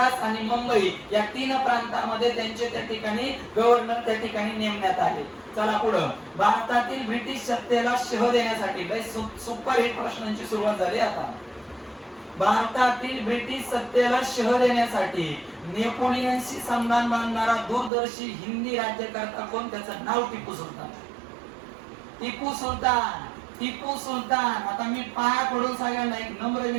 आणि मुंबई या 3 प्रांतांमध्ये त्यांचे त्या ठिकाणी गव्हर्नर त्या ठिकाणी नेमण्यात आले. चला पुढं. भारतातील ब्रिटिश सत्तेला शह देण्यासाठी सुपर हिट प्रश्नांची सुरुवात झाली आता. भारतातील ब्रिटिश सत्तेला शह देण्यासाठी नेपोलियनशी संधान बांधणारा दूरदर्शी हिंदी राज्यकर्ता कोण? त्याचं नाव टिपू सुलतान. टिपू सुलतान, टिपू सुलतान. आता मी पाया पडून सगळ्यांना एक नम्र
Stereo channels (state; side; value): drops out; left; at 17.9 s